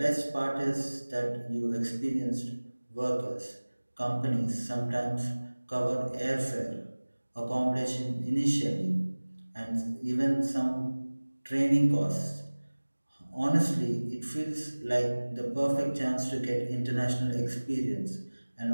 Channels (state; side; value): inverted; both; correlation -1.00